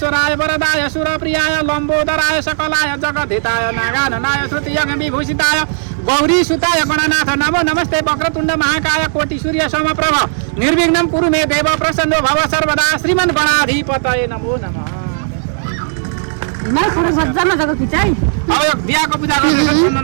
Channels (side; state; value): left; silent; digital silence